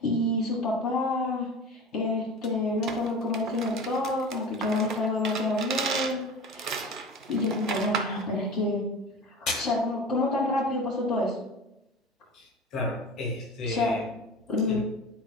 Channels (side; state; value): both; normal; correlation 0.34